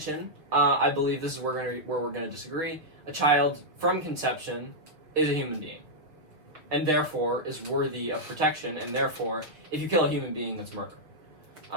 I believe this is where we're going to disagree. A child from conception is a human being, and therefore is worthy of protection, and therefore, if you kill a human being, that's murder.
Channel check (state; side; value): late; left; 6.3 ms